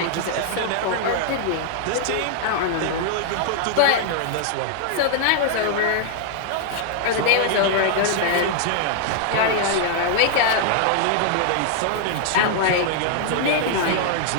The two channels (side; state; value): both; different; correlation -0.01